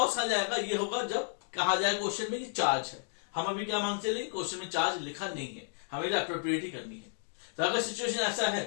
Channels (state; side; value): silent; right; digital silence